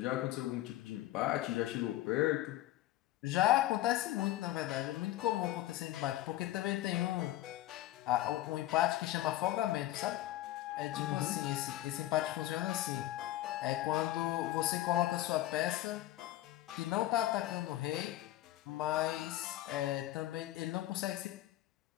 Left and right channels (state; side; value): quieter; right; 15.1 dB